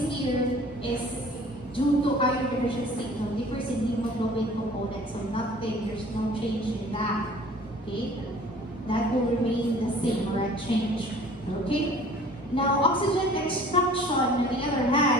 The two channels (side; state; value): both; normal; correlation 0.49